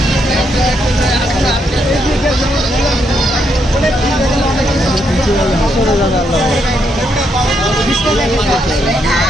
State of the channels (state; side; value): normal; both; correlation 0.77